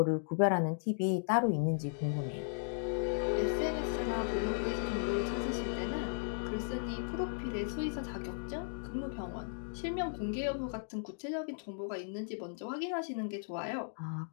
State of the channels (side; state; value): right; silent; digital silence